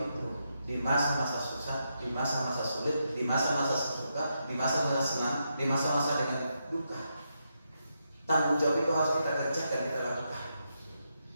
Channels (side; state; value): both; inverted; correlation -0.83